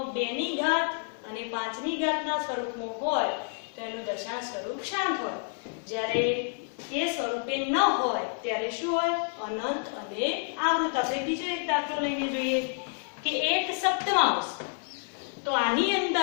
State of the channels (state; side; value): silent; right; 57 dB below the other